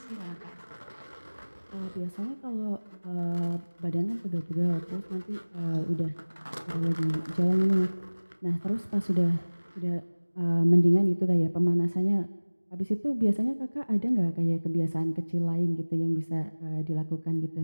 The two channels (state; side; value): inverted; both; correlation -1.00